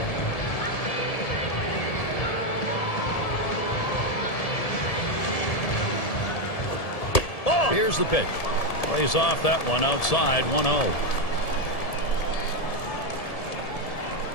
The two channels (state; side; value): late; right; 1.7 ms